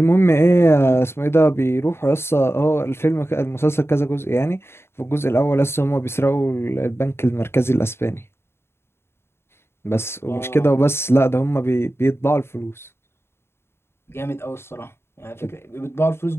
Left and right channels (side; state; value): right; late; 0.12 ms